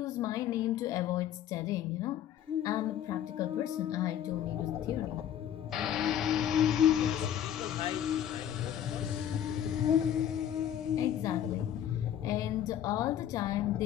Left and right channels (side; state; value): right; quieter; 10.4 dB